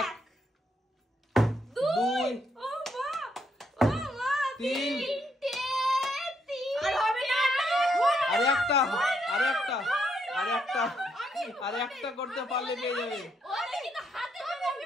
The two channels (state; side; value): normal; both; correlation 0.76